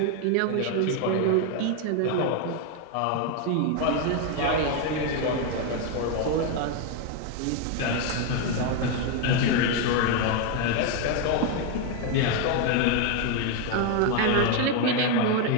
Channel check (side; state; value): both; different; correlation 0.01